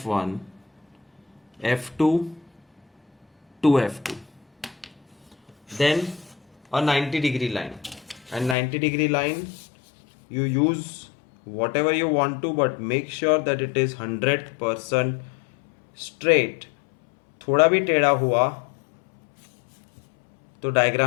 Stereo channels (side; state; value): right; drops out; at 8.6 s